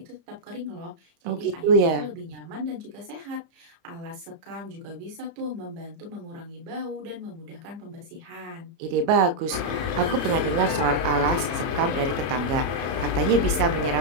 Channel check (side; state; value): left; late; 30 ms